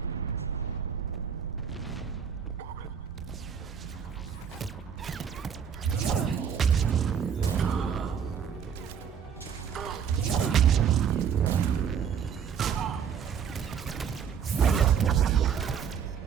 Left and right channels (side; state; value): left; quieter; 7.7 dB